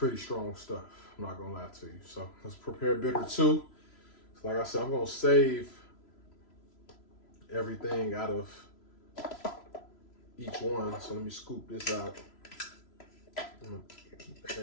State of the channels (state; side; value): late; right; 3.0 ms